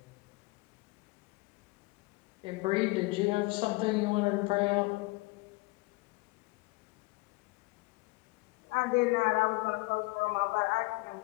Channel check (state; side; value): quieter; right; 24.4 dB